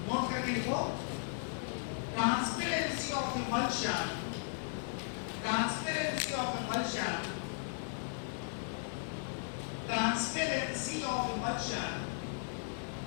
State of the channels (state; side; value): silent; right; digital silence